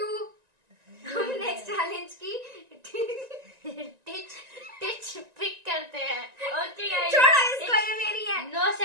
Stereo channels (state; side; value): late; left; 1.9 ms